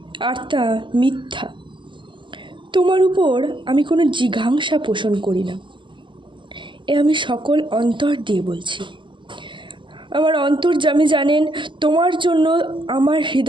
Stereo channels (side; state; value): left; late; 0.24 ms